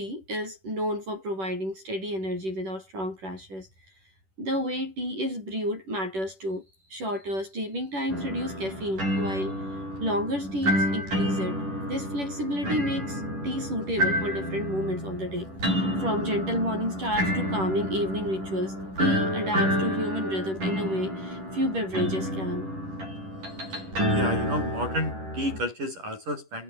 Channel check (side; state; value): left; late; 10 ms